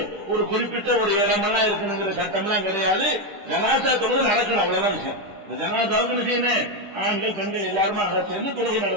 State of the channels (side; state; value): left; late; 10 ms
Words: ஒரு குறிப்பிட்ட ஒரு இடமெல்லாம் இருக்குங்கிற சட்டம்லாம் கிடையாது. ஜனாதா தொழுகை நடக்கணும், அவ்வளவுதான் விஷயம். இந்த ஜனாதாவுக்கு என்ன செய்யணும், ஆண்கள் பெண்கள் எல்லாருமா சேர்ந்து தொழுகை